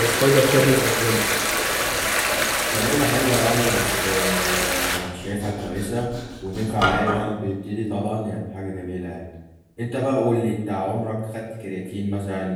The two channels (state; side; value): identical; both; correlation 1.00